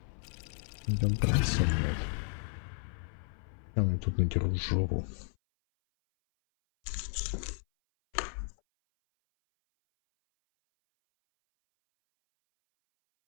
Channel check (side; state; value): right; silent; 56 dB below the other